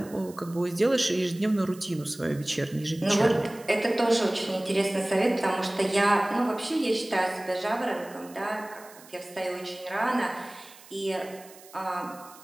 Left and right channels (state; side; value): noise; right; hiss, 21 dB below the sound